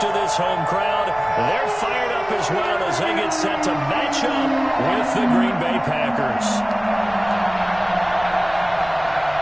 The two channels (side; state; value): right; noise; rumble, 21 dB below the sound